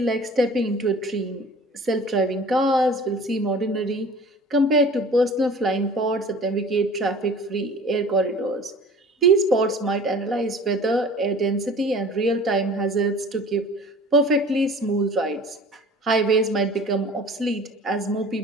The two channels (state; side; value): normal; both; correlation 0.44